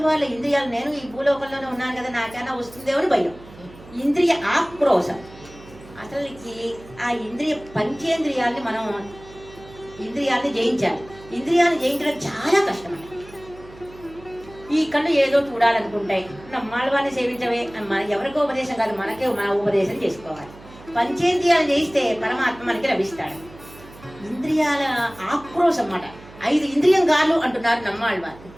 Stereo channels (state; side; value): noise; right; hum, 20 dB below the sound